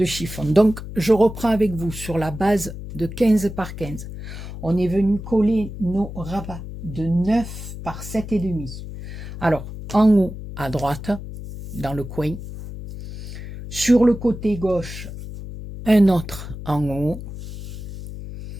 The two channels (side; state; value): left; noise; hum, 10 dB below the sound